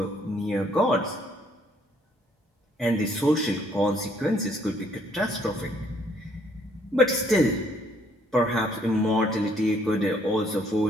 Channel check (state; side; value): normal; both; correlation 0.65